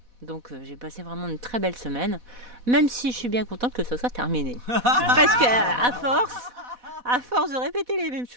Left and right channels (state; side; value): late; left; 4.1 ms